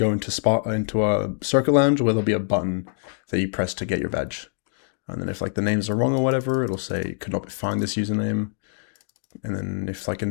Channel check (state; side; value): silent; right; digital silence